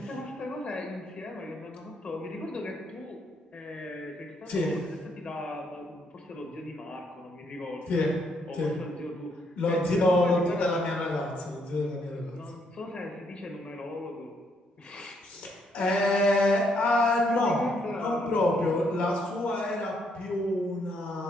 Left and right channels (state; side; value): normal; both; correlation 0.73